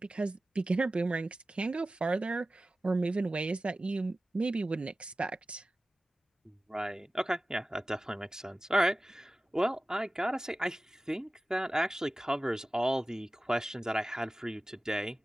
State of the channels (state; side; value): normal; both; correlation 0.96